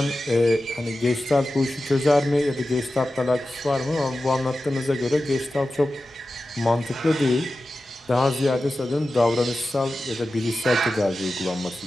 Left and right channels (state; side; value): normal; both; correlation 0.93